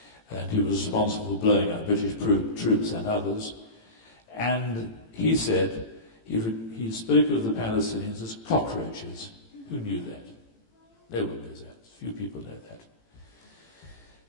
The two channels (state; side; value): late; right; 18 ms